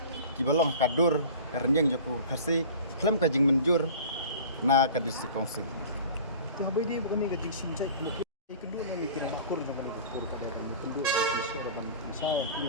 kibalong kadur karenyang joko khasi klem ka jing menjur na ka district council to habai dei bukan ni ka jing simjai lo kedua na mikir na kur na kur ka kedua sa ban sa ini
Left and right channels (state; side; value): inverted; both; correlation -0.40